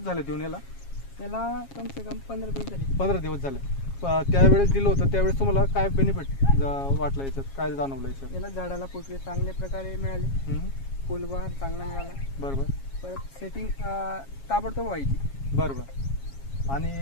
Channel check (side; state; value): right; late; 7.3 ms